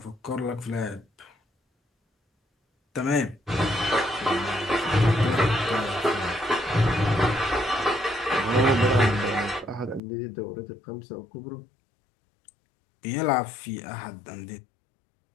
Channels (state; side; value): drops out; right; at 10.0 s